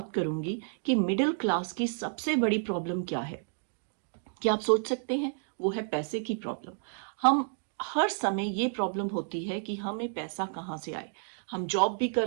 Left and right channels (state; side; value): silent; left; digital silence